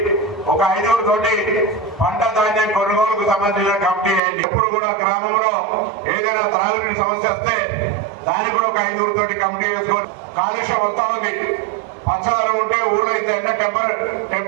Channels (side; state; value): left; drops out; at 4.2 s